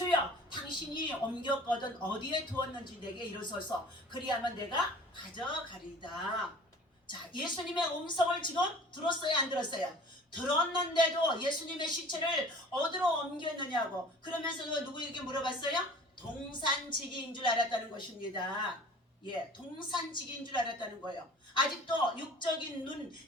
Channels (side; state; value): both; normal; correlation 0.45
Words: 당신이 옮겼거든 어디에 두었는지 내게 이르소서 그리하면 내가 가져가리이다. 자, 예수님의 음성을 지금 들었어요 안 들었어요? 들었는데도 예수님의 시체를 어디로 옮겼느냐고 그러면서 누구에게 물어봤어요? 동산지기인 줄 알았다는 것입니다. 예, 동산지기인 줄 알았다는 거예요. 아직도 육적인 눈,